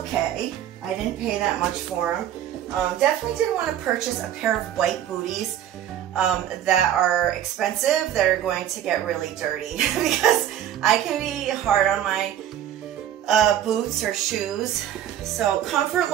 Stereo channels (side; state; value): left; quieter; 10.9 dB